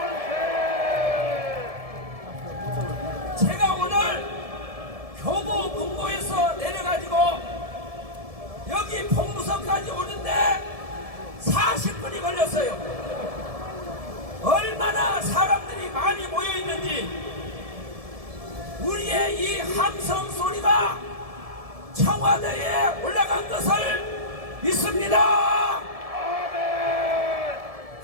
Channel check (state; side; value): late; left; 1.7 ms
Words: 제가 오늘 교보 문고에서 내려가지고 여기 봉무서까지 오는데 40분이 걸렸어요. 얼마나 사람들이 많이 모여있는지 우리의 이 함성 소리가 청와대에 올라간 것을 믿습니다.